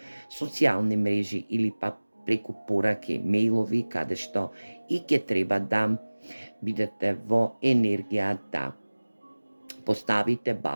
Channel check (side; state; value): both; inverted; correlation -1.00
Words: социјални мрежи или пак преку пораки, мејлови, каде што и ќе треба да бидете во енергија да поставите